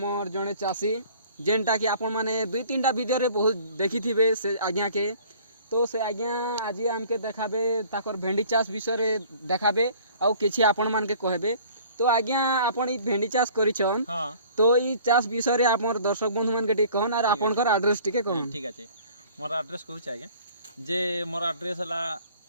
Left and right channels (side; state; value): both; inverted; correlation -0.51